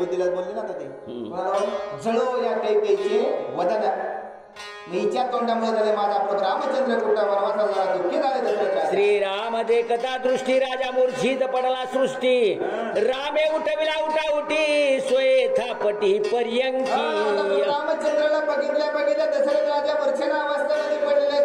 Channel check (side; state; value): both; identical; correlation 1.00